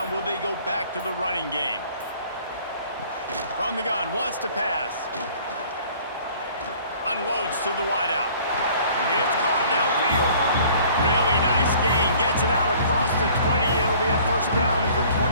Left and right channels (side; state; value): both; inverted; correlation -0.53